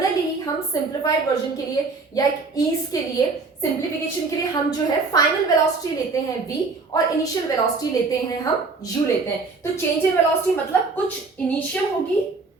हम सिंप्लीफाइड वर्जन के लिए या एक ईज के लिए, सिंप्लीफिकेशन के लिए हम जो है फाइनल वेलोसिटी लेते हैं v और इनिशियल वेलोसिटी लेते हैं हम u लेते हैं. तो चेंज इन वेलोसिटी मतलब कुछ इनिशियल होगी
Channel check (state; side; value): quieter; left; 4.1 dB